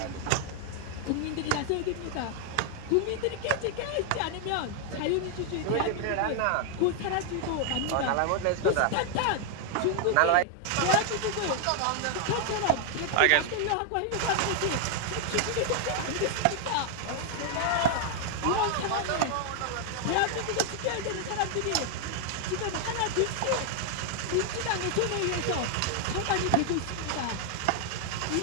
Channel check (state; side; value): different; both; correlation 0.00